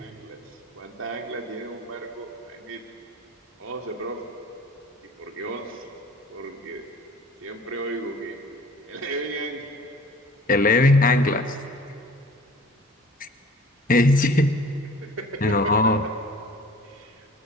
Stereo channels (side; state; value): both; normal; correlation 0.46